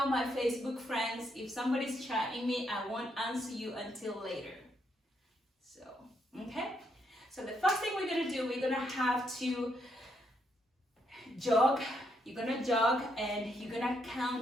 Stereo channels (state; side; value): normal; both; correlation 0.76